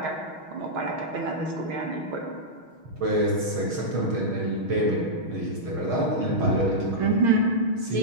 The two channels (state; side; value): late; left; 6.4 ms